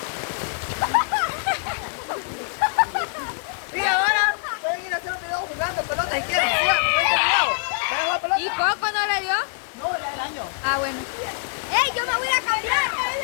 Y ahora pueden ir a hacer un video jugando pelota si quieren. Sigan, jueguen el video. ¿Pueden jugar pelota? ¿Y Coco no le dio? No, ya el año. Ah, bueno. ¡Ey, yo me voy a cambiar!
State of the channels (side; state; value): right; silent; digital silence